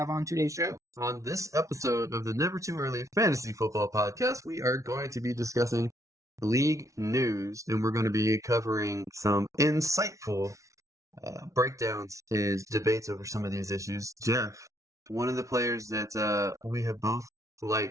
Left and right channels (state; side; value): late; left; 0.15 ms